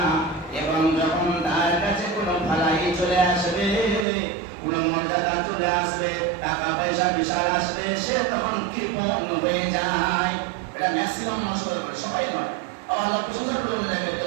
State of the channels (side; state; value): left; drops out; at 4.0 s